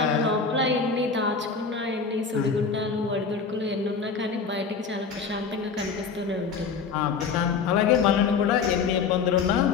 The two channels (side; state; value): right; quieter; 5.4 dB